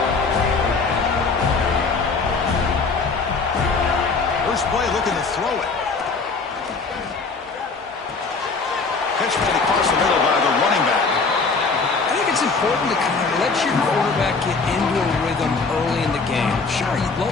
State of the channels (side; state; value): right; quieter; 4.3 dB